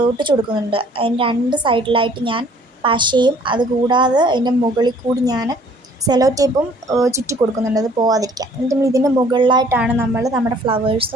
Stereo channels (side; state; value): both; normal; correlation 0.57